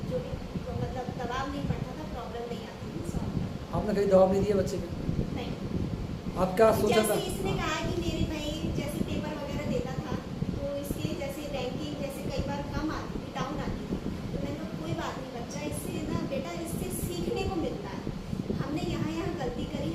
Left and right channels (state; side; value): identical; both; correlation 1.00